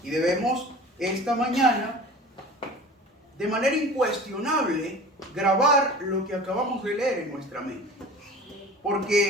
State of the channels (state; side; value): normal; both; correlation 0.40